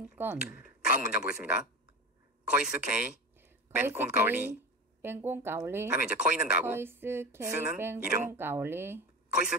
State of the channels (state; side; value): normal; both; correlation 0.25